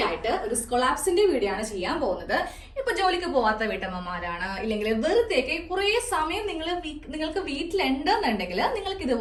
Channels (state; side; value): identical; both; correlation 1.00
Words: ആയിട്ട് ഒരു സ്കൊളാപ്സിന്റെ വീഡിയോ ആണ് ചെയ്യാൻ പോകുന്നത്. ഇപ്പൊ ജോലിക്ക് പോവാത്ത വീട്ടമ്മമാരാണ്, ഇല്ലെങ്കിൽ വെറുതെയൊക്കെ കുറെ സമയം നിങ്ങൾക്ക് വീട്ടിലുണ്ടെന്നുണ്ടെങ്കിൽ നിങ്ങൾക്ക്